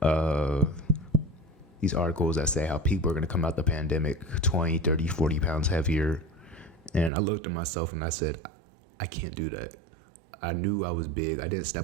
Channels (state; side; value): drops out; left; at 7.1 s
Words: these articles that say how people are going to come out the pandemic 20, 30, 40 pounds heavier. And I looked at myself and I said, I can't do that. I knew I was big. I didn't